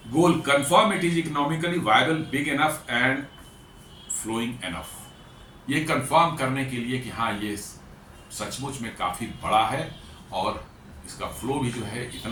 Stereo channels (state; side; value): identical; both; correlation 1.00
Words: Goal, confirm it is economically viable, big enough and flowing enough. ये कंफर्म करने के लिए कि हाँ ये सचमुच में काफ़ी बड़ा है और इसका फ्लो भी जो है